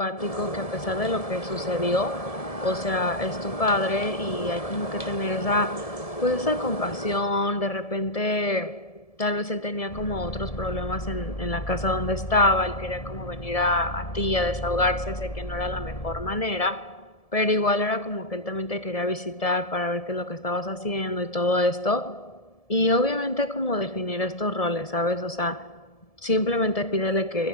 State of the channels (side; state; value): right; late; 1.7 ms